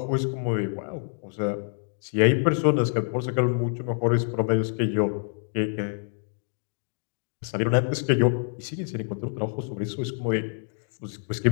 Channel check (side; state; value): right; silent; 60 dB below the other